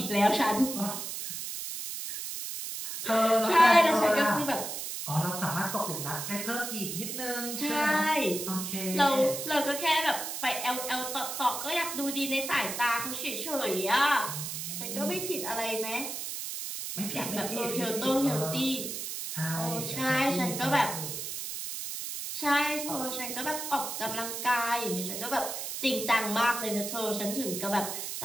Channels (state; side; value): noise; right; hiss, 5 dB below the sound